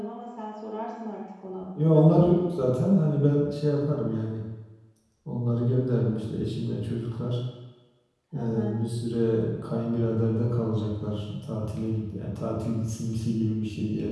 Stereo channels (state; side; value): identical; both; correlation 1.00